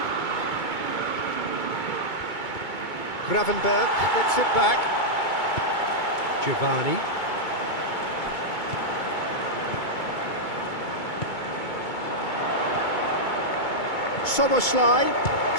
Gravenberg gets it back. Giovanni. Soboslai,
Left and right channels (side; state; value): right; late; 2.2 ms